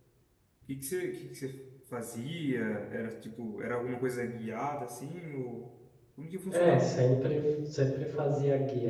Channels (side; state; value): both; identical; correlation 1.00